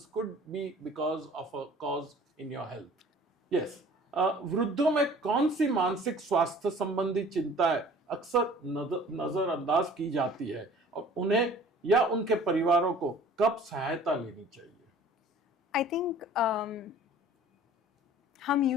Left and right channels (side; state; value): both; normal; correlation 0.48